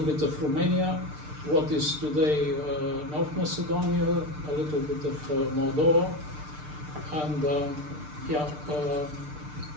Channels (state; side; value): late; left; 6.7 ms